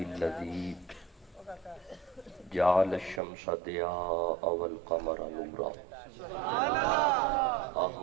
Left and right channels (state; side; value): drops out; left; at 3.2 s